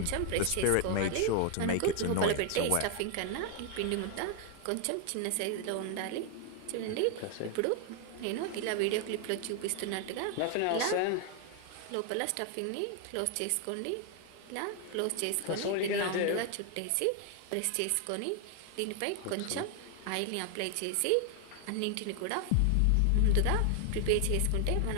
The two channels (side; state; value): both; different; correlation 0.01